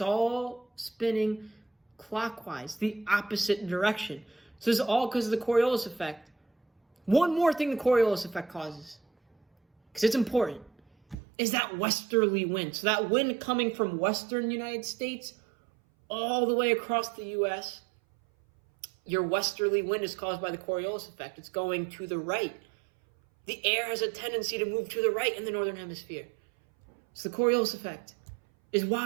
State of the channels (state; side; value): drops out; left; at 11.2 s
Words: all spinning clockwise, the opposite direction. So this is all because of the Coriolis effect. One more thing the Coriolis effect causes, because it's important, is that westerly wind. So that wind coming from western United States all the way across the U.S., your westerly wind is caused by the Coriolis effect. It's going to the right. The air has a tendency to move to the right in the northern hemisphere. So the Coriolis effect is